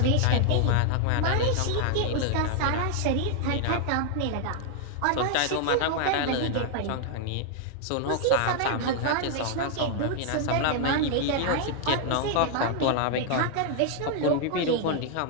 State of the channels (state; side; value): different; both; correlation 0.00